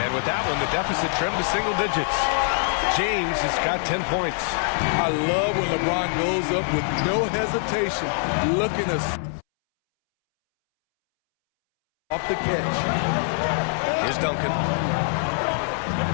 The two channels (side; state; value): right; silent; 63 dB below the other